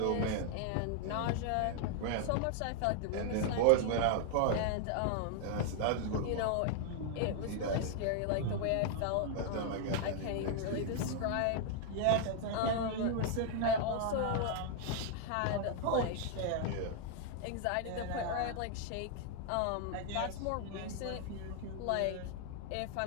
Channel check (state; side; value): different; both; correlation 0.00